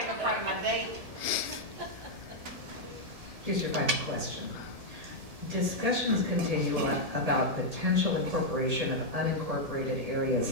part of my day. Here's your final question. Discussions continue about potential incorporation of unincorporated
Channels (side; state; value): left; late; 1.7 ms